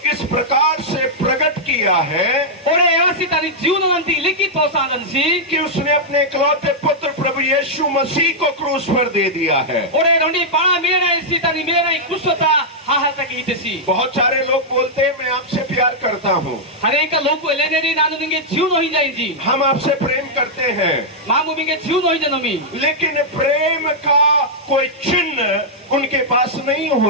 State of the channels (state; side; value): normal; both; correlation -0.07